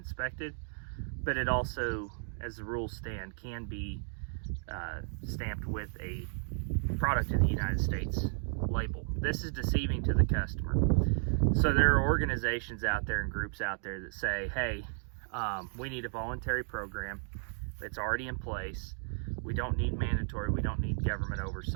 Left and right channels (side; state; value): left; silent; 55 dB below the other